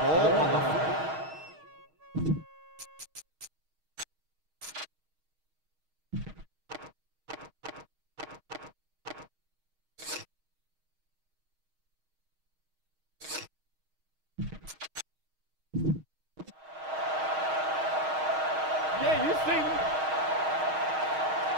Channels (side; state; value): left; late; 6.4 ms